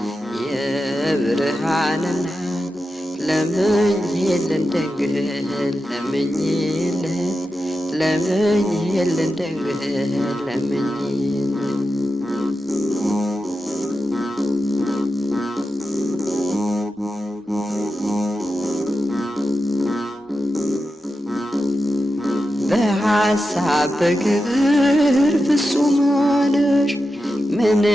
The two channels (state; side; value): normal; both; correlation 0.90